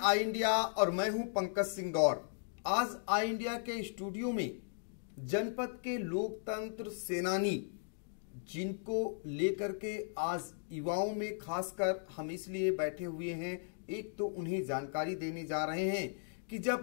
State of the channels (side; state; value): right; silent; digital silence